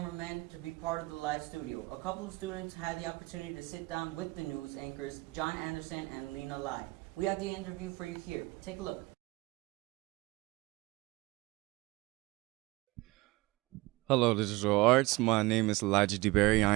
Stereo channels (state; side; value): quieter; left; 21.9 dB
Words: to be part of the live studio. A couple of students had the opportunity to sit down with the news anchors, John Anderson and Lena Lai. We have the interview for you here. Take a look. Hello, Digital Arts. My name is Elijah DeBerry. I